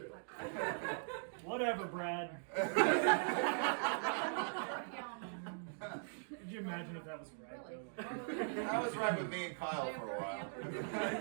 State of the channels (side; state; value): left; silent; digital silence